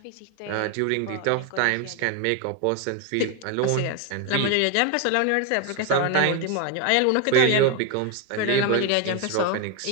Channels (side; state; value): both; different; correlation 0.01